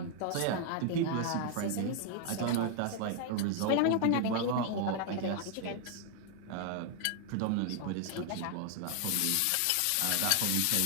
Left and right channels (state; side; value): different; both; correlation 0.00